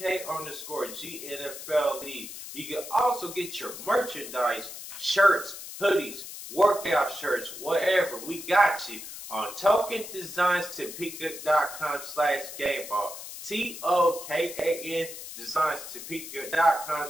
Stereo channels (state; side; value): noise; left; hiss, 11 dB below the sound